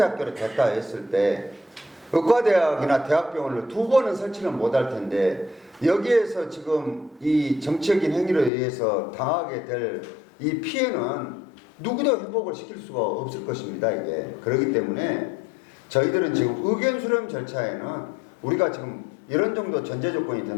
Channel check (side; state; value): right; drops out; at 8.5 s